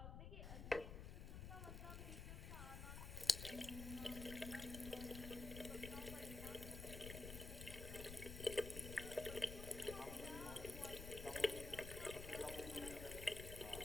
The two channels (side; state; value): left; noise; rumble, 7 dB below the sound